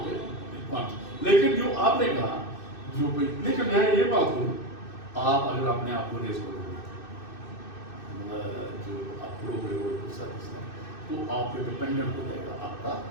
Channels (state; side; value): late; right; 2.6 ms